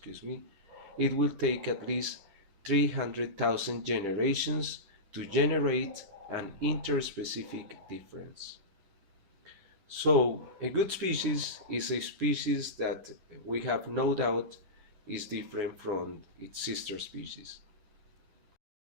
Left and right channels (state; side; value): late; left; 10 ms